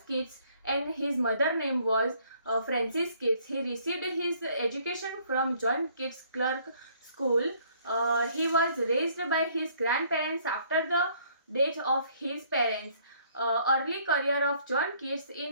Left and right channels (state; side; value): inverted; both; correlation -0.62